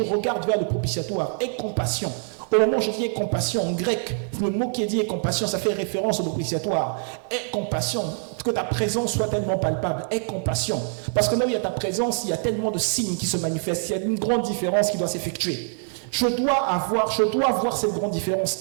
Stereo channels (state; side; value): silent; left; 62 dB below the other